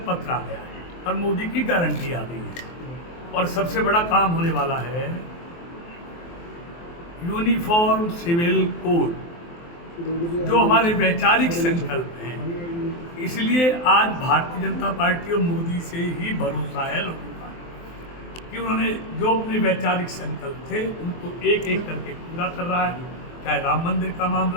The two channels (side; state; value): right; late; 23 ms